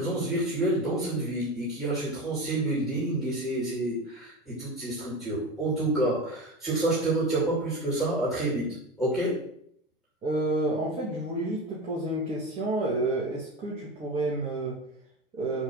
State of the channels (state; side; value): normal; both; correlation 0.25